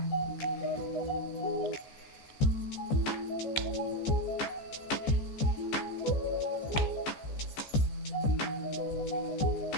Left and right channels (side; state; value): right; late; 14 ms